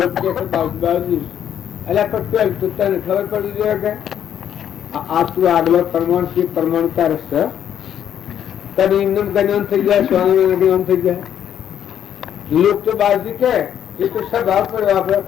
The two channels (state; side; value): quieter; right; 9.7 dB